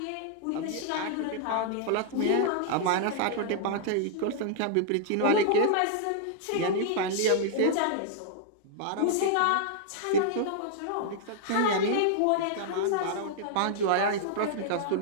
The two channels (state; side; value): different; both; correlation -0.01